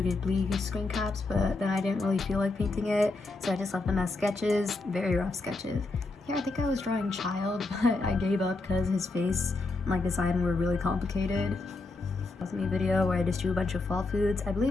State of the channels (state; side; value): quieter; right; 3.3 dB